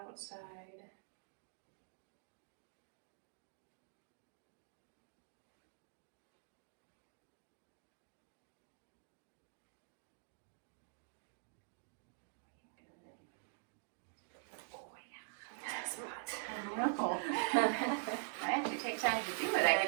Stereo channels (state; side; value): silent; left; digital silence